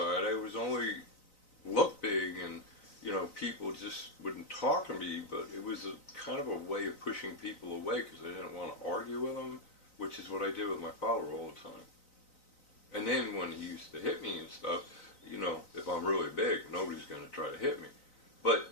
I was only look big, and people just wouldn't talk to me, but it was a kind of a way of pushing people away because I didn't want to argue with them, which is what I did with my father all the time. And then when he used to hit me and stuff, if I'm really big, nobody's going to try to hit me. But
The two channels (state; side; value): late; right; 3.9 ms